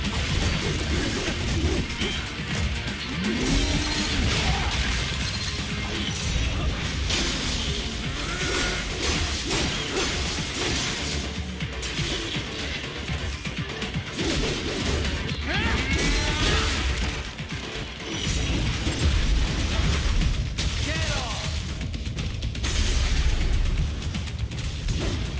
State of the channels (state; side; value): identical; both; correlation 1.00